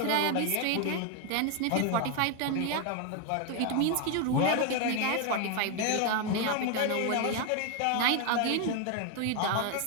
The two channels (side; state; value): both; different; correlation 0.01